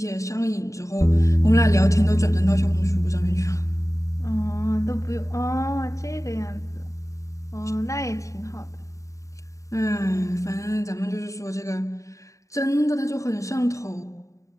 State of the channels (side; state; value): right; late; 0.15 ms